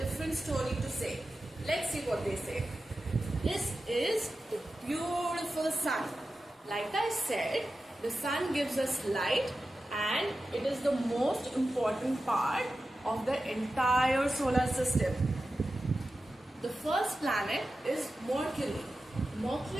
story to say. Let's see what they say. This is the beautiful sun. Like I said, the sun gives us light and it is the most important part of the entire solar system. The first planet is Mercury.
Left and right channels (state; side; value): normal; both; correlation 0.93